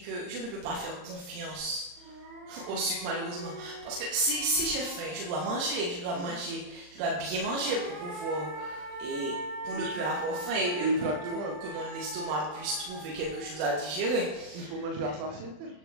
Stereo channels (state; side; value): late; left; 40 ms